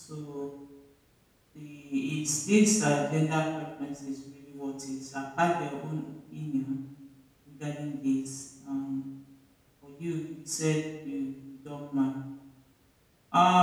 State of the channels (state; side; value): identical; both; correlation 1.00